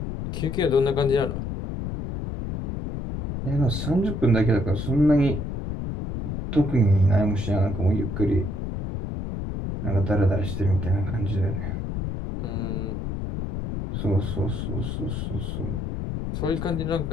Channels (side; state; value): left; noise; rumble, 4 dB below the sound